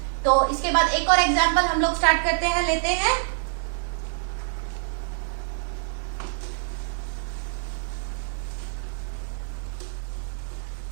तो इसके बाद एक और एग्जांपल हम लोग स्टार्ट करते हैं, लेते हैं।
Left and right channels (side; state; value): left; silent; digital silence